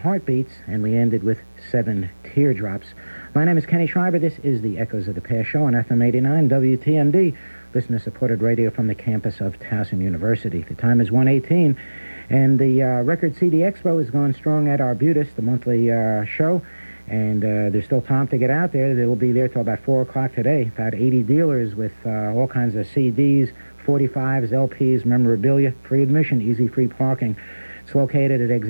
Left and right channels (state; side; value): inverted; both; correlation -1.00